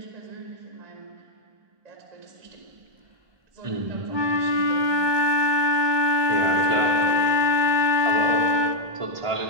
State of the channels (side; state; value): left; late; 1.2 ms